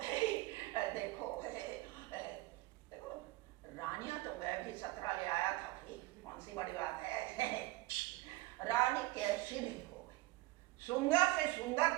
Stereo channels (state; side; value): quieter; left; 19.0 dB